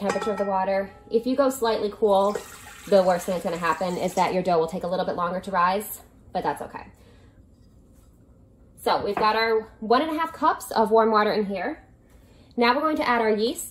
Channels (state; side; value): identical; both; correlation 1.00